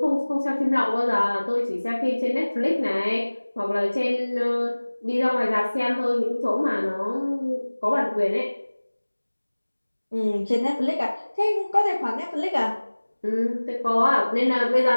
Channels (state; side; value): inverted; both; correlation -1.00